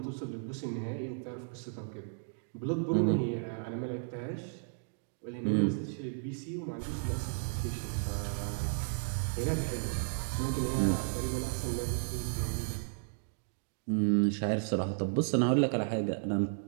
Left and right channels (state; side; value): silent; left; digital silence